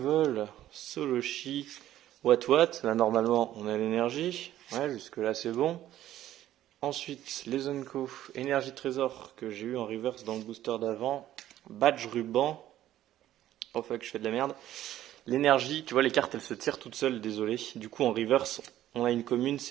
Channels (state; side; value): quieter; left; 13.0 dB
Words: Soloshi, What, là normalement on a l'énergie. Ouais, jusque là c'est bon. Ensuite, les Unco, énergie trésor que j'ai eu en reverse dans le booster d'avant. Badge ruban. Oh fuck, je fais de la merde. L'énergie, tu vois, les cartes elles se tirent toutes seules, désolé. Du coup, en reverse, on a une commune,